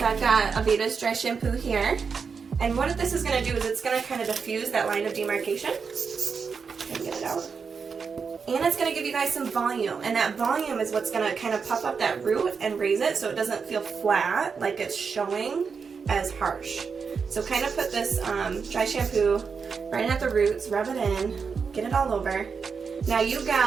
I've got Aveda's dry shampoo here. And what this is going to do is it's going to kind of diffuse that line of demarcation. Get it out. And it's going to give you guys some volume. And that volume is what's going to kind of puff up that root and raise it so it doesn't feel flat, like it's showing as harsh. So kind of put this dry shampoo right at the roots, rub it in, get it all over. Now you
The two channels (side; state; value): left; quieter; 5.6 dB